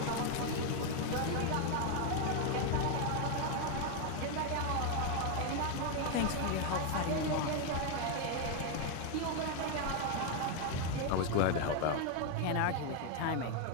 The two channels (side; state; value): both; different; correlation 0.01